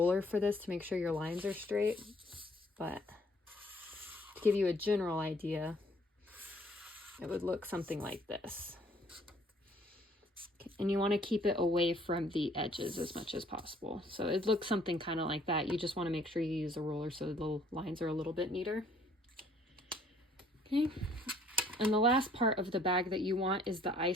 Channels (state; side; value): normal; both; correlation 0.61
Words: for this to make sure your lines are straight, but to give you a general idea, it would look something like this. Okay. And you want to keep it away from the edges as much as possible. So it looks something kind of like that. You just want to make sure you use a ruler so the lines are a little bit neater. Okay. And the last part of the bag that you want is the